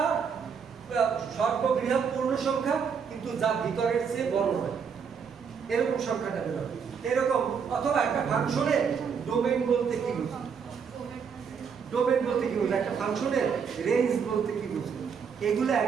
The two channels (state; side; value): quieter; left; 6.5 dB